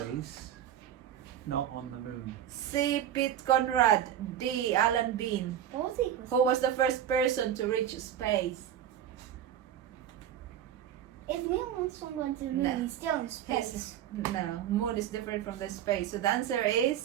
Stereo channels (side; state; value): left; quieter; 10.3 dB